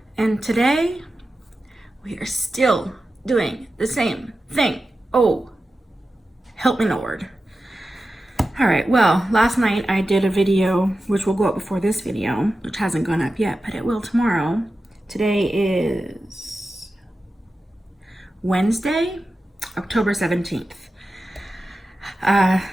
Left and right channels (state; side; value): normal; both; correlation 0.93